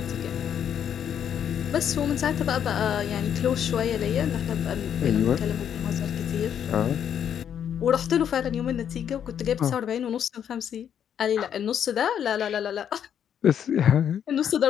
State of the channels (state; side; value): quieter; right; 8.9 dB